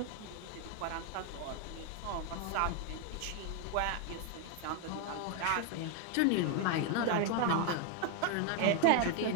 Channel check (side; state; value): both; different; correlation 0.01